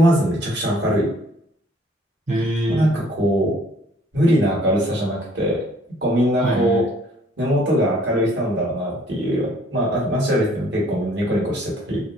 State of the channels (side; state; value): both; normal; correlation 0.60